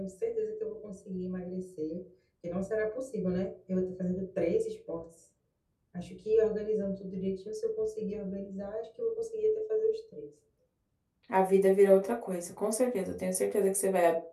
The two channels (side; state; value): both; identical; correlation 1.00